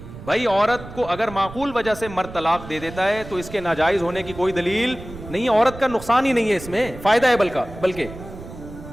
بھائی عورت کو اگر معقول وجہ سے مرد طلاق دے دیتا ہے تو اس کے ناجائز ہونے کی کوئی دلیل نہیں ہے، عورت کا نقصان ہی نہیں ہے، اس میں فائدہ ہے بلکہ.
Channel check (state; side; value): noise; right; rumble, 14 dB below the sound